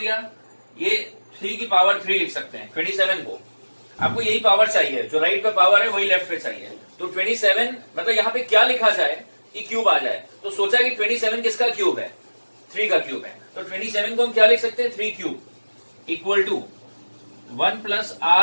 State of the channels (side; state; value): both; inverted; correlation -1.00